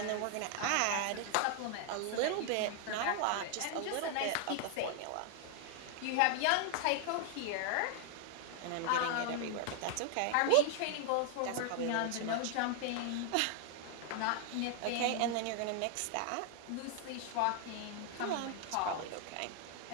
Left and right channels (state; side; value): different; both; correlation 0.00